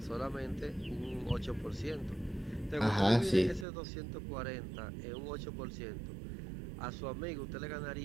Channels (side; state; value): left; drops out; at 3.7 s